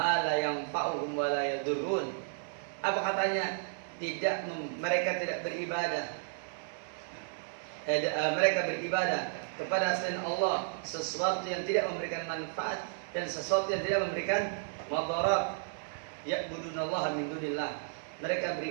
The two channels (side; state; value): left; silent; 56 dB below the other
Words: la yanfa'uhum wa la yadurrun. Apa katanya? Mereka tidak beribadah. Mereka beribadah kepada selain Allah sesuatu yang tidak memberikan manfaat dan sesuatu yang tidak memberikan madarat. Ya'budunallaha min dunillah. Mereka